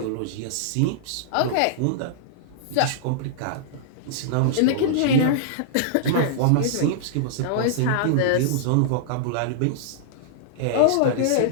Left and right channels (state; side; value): different; both; correlation -0.02